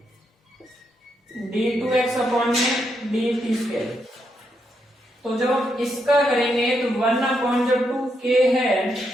d2x अपॉन में dt स्क्वायर। तो जब हम इसका करेंगे तो 1 अपॉन जो 2k है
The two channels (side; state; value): both; normal; correlation 0.80